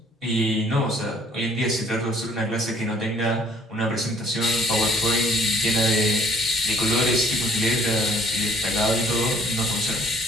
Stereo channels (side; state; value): both; normal; correlation 0.59